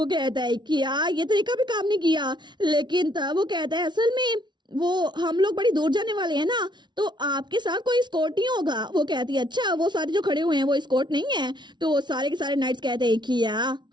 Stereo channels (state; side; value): late; left; 0.21 ms